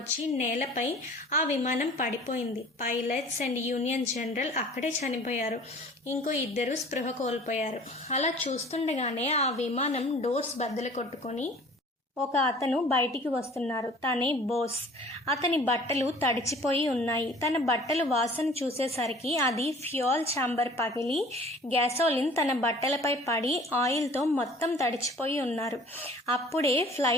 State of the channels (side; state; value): both; normal; correlation 0.48